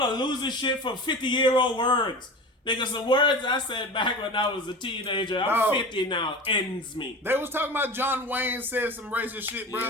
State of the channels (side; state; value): both; normal; correlation 0.32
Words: losing shit from 50-year-old words. Nigga, some words I said back when I was a teenager, I'm 50 now, ends me. They was talking about John Wayne said some racist shit, bro.